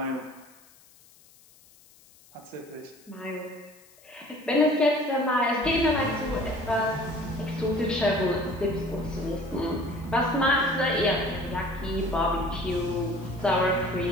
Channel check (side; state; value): left; noise; hiss, 27 dB below the sound